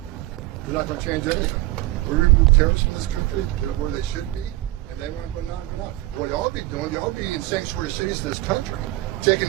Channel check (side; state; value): left; quieter; 18.3 dB